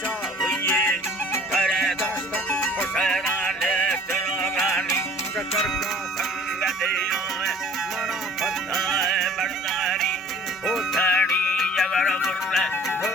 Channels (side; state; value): both; normal; correlation 0.49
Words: हुए करे दस्त हुसैना ले तिरोगानी शकर का संग दियो मना फताए बरदारी उठानी जगर मुर्रे